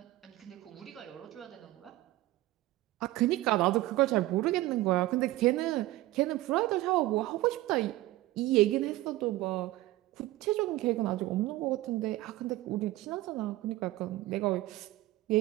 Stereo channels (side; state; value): left; quieter; 17.3 dB